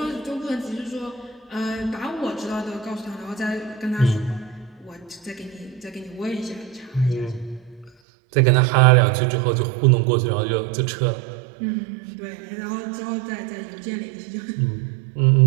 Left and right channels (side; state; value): left; drops out; at 7.9 s